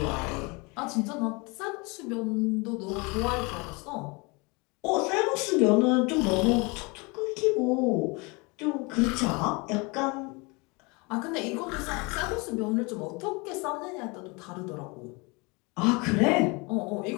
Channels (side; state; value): right; quieter; 28.1 dB